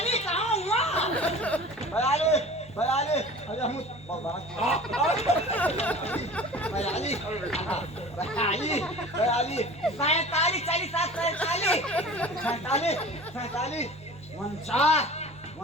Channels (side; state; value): both; normal; correlation 0.40